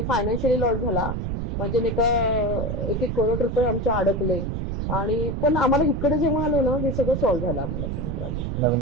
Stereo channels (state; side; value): noise; right; rumble, 2 dB below the sound